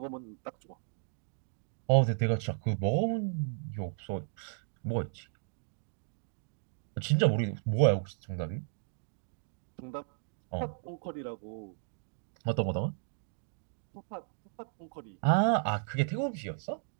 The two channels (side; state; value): left; silent; digital silence